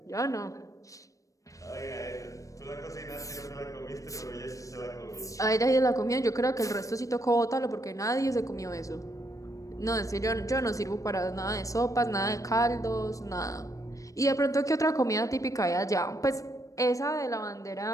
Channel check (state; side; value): late; right; 0.16 ms